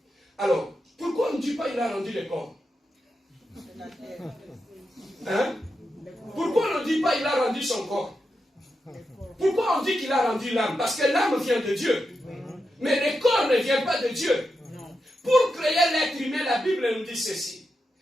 Alors, pourquoi on ne dit pas il a rendu le corps? Hein? Pourquoi on ne dit pas il a rendu son corps? Pourquoi on dit qu'il a rendu l'âme? Parce que l'âme vient de Dieu. Mais le corps ne vient pas de Dieu. Pour créer l'être humain, la Bible nous dit ceci.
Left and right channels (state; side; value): normal; both; correlation 0.87